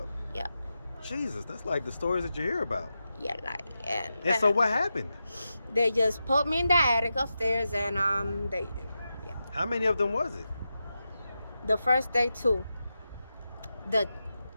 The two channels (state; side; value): inverted; both; correlation -0.90